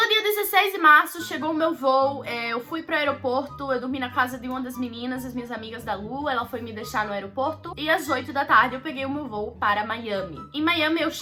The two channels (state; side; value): identical; both; correlation 1.00